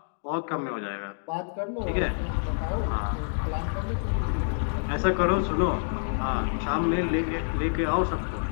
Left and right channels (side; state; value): right; silent; digital silence